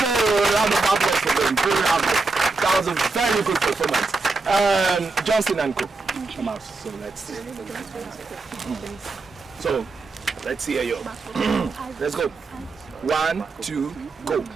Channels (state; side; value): quieter; left; 3.7 dB